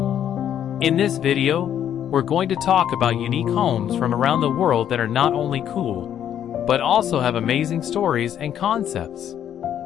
In this video, we're going to talk about unique homes from around the world that are not only cool, but also have amazing stories and concepts.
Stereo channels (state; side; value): quieter; right; 10.0 dB